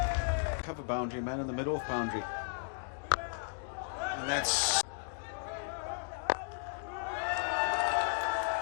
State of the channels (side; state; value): right; silent; digital silence